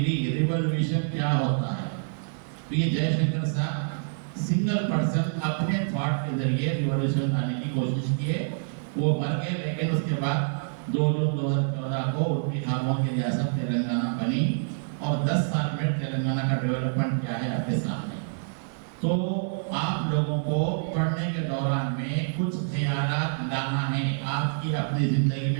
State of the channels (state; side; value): silent; left; 57 dB below the other